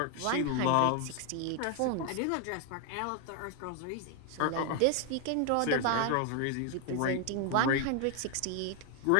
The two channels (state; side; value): different; both; correlation 0.00